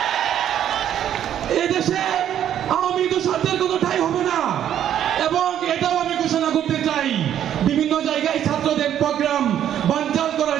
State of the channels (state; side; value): quieter; left; 10.4 dB